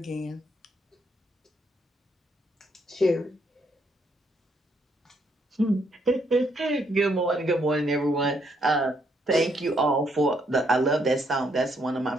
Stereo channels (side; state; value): both; normal; correlation 0.73